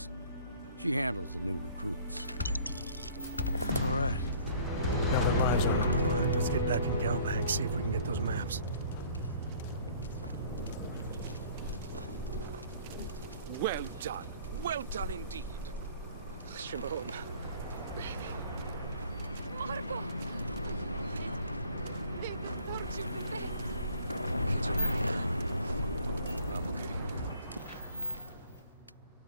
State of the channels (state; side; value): inverted; both; correlation -0.54